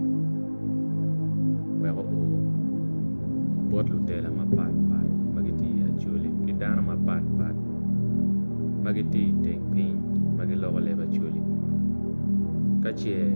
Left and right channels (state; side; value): inverted; both; correlation -1.00